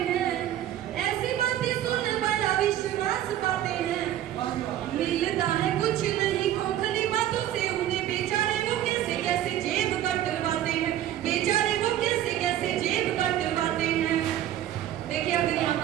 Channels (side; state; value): left; quieter; 12.1 dB